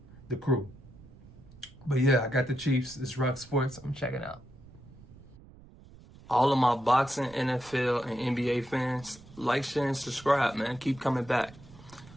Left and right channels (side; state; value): right; noise; rumble, 21 dB below the sound